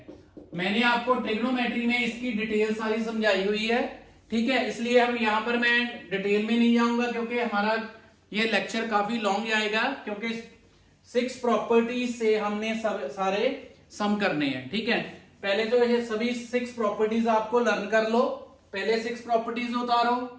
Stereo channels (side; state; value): both; identical; correlation 1.00